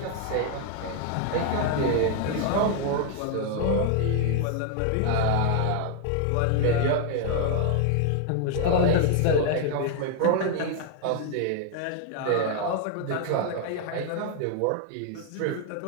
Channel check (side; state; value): both; different; correlation 0.00